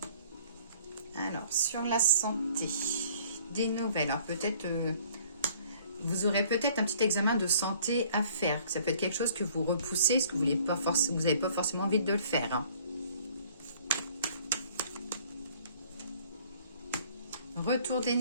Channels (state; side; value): inverted; both; correlation -0.56